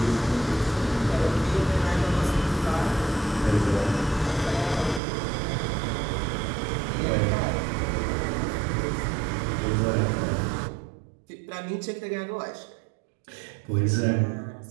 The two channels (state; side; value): drops out; left; at 5.0 s